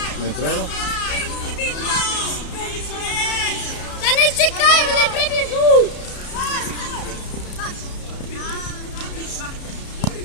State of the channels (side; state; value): right; late; 33 ms